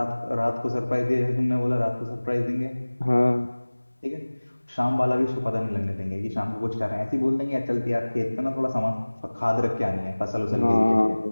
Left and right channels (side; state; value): both; inverted; correlation -1.00